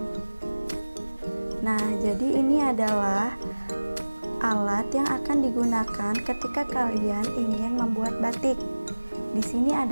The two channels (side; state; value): both; inverted; correlation -1.00